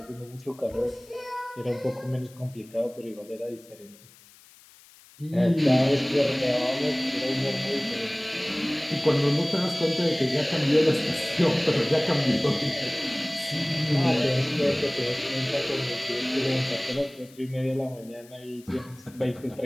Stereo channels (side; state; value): left; noise; hiss, 25 dB below the sound